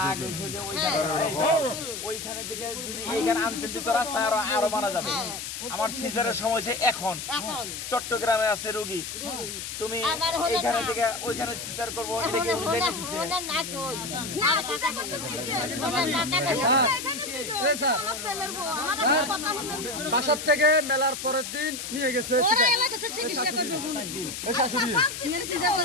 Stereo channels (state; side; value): noise; left; hiss, 7 dB below the sound